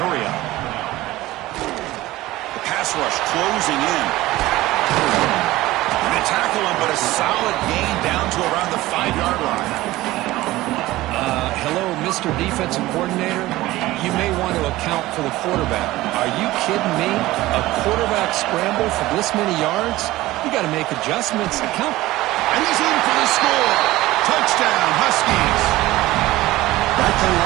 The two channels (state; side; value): quieter; left; 17.5 dB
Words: The pass rush closing in. And they tackle him, but a solid gain down to around the 5-yard line. Hello, Mr. Defensive Coordinator. You may want to account for the quarterback. Are you kidding me? A quarterback scramble for this many yards? You got to make adjustments. Account. And he's in for the score. Touchdown, Huskies. That kind of